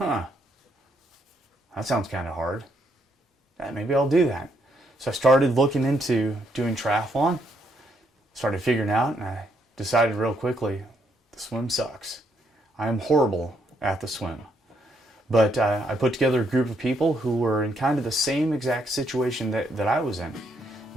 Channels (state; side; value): normal; both; correlation 0.73